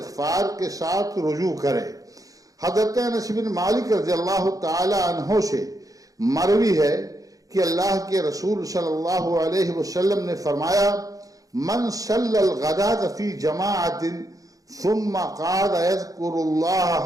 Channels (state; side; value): late; left; 0.17 ms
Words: کے ساتھ رجوع کرے۔ حضرت انس بن مالک رضی اللہ تعالی عنہ سے مروی ہے کہ اللہ کے رسول صلی اللہ علیہ وسلم نے فرمایا، من صلی الغداۃ فی جماعۃ ثم قعد يذكر الله